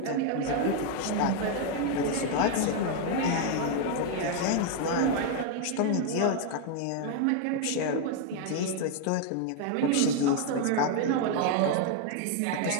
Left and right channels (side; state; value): both; different; correlation 0.00